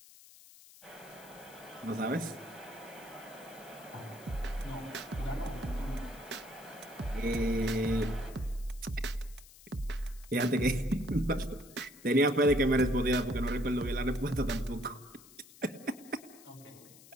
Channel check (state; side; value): noise; left; hiss, 21 dB below the sound